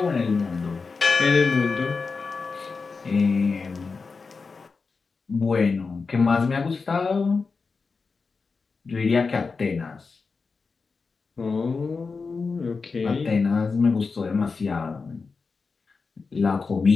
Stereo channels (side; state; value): right; quieter; 4.6 dB